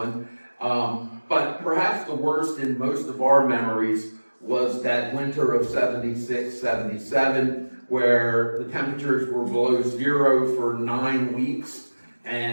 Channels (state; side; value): inverted; both; correlation -1.00